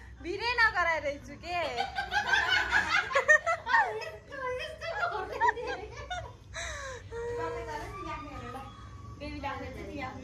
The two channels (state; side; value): identical; both; correlation 1.00